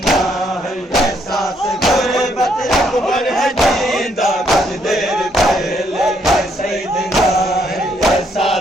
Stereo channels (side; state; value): both; normal; correlation 0.72